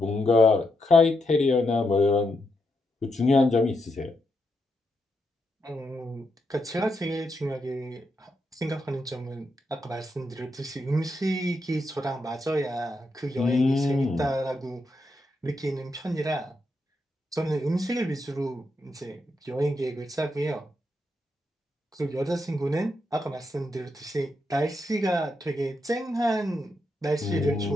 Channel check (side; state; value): both; normal; correlation 0.82